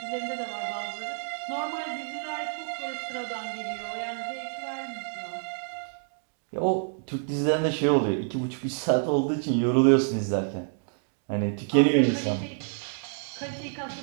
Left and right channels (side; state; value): left; silent; digital silence